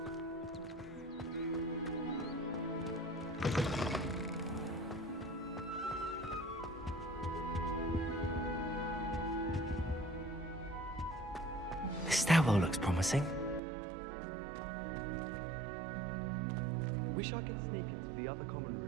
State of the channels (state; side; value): drops out; left; at 13.6 s